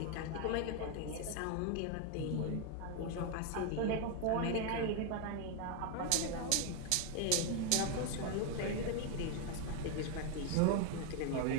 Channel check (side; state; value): both; different; correlation 0.01